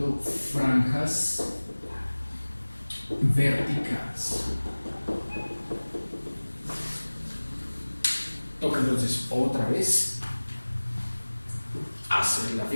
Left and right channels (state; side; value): inverted; both; correlation -1.00